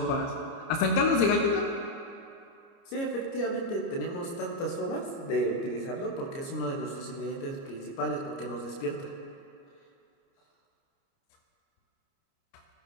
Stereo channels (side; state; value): right; late; 30 ms